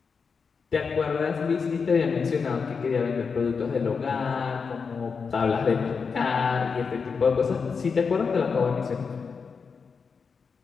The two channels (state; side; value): quieter; right; 5.5 dB